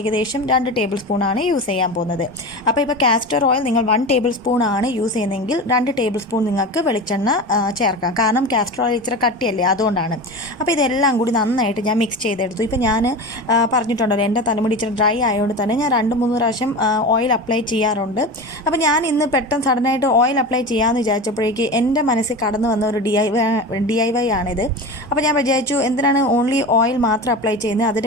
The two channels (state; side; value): normal; both; correlation 0.27